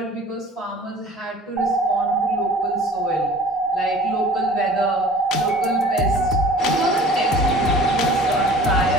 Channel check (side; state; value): both; normal; correlation 0.46